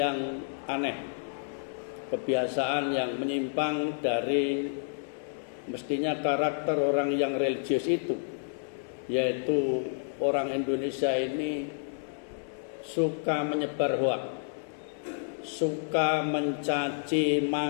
aneh, kebiasaan yang menyimpang dari mestinya karakter orang yang religius itu, yaitu orang Indonesia ini suka menyebar hoak, suka mencaci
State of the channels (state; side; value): silent; right; digital silence